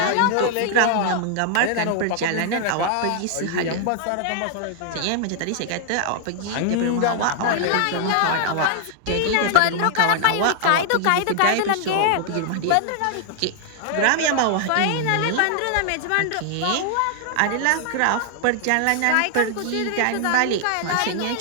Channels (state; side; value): different; both; correlation 0.00